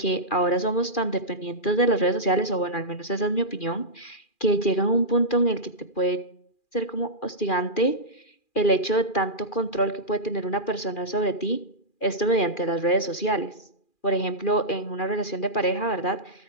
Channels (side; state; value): right; late; 2.4 ms